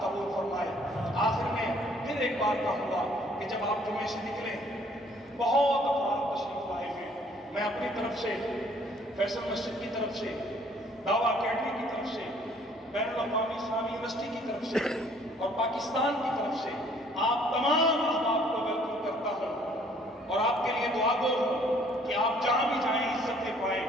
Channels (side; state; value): both; normal; correlation 0.60